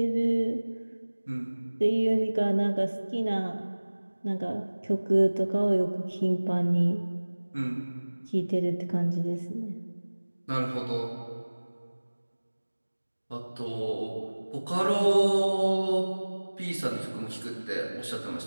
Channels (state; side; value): inverted; both; correlation -1.00